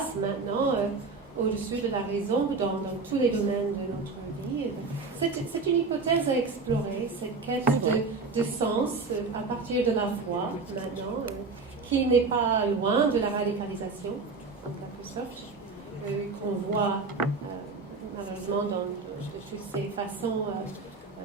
maintenant au-dessus de la raison dans tous les domaines de notre vie. C'est une hypothèse à explorer, cette quête de sens à partir de la foi maintenant, qui n'est pas loin de la radicalisation, en quelque sorte. Qu'on voit malheureusement dans toutes ces façons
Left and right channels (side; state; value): left; quieter; 4.1 dB